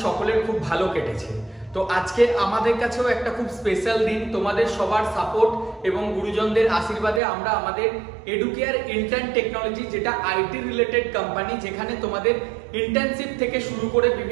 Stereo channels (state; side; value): drops out; left; at 7.2 s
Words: সকলের খুব ভালো কেটেছে। তো আজকে আমাদের কাছেও একটা খুব স্পেশাল দিন। তোমাদের সবার সাপোর্ট এবং গুরুজনদের আশীর্বাদে আমরা আমাদের এডুকেয়ার ইন্টার্ন টেকনোলজি, যেটা আইটি রিলেটেড কোম্পানি, যেখানে তোমাদের ইন্টার্নশিপ থেকে শুরু করে